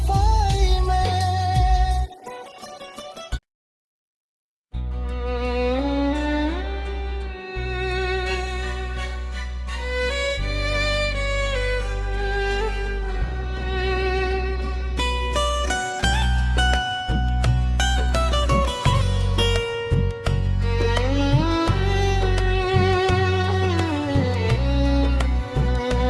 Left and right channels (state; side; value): identical; both; correlation 1.00